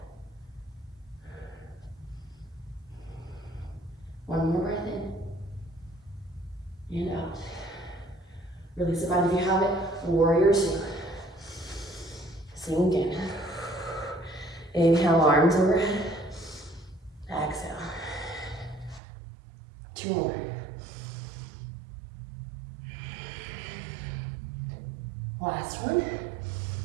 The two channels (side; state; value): left; drops out; at 19.0 s